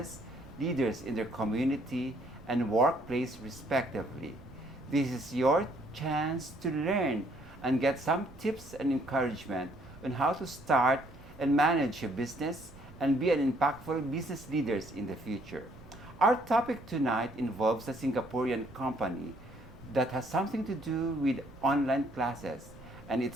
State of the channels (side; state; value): right; noise; rumble, 20 dB below the sound